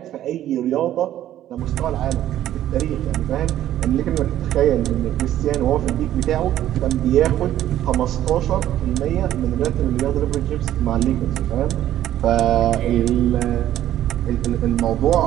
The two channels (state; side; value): quieter; left; 12.4 dB